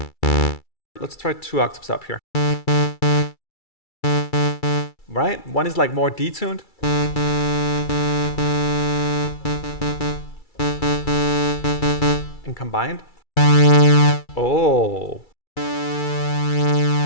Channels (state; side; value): late; right; 2.3 ms